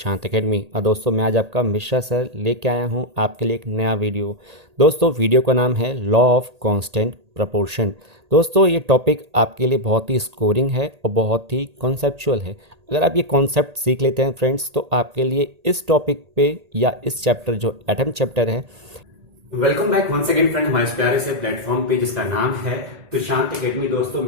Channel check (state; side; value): late; left; 1.8 ms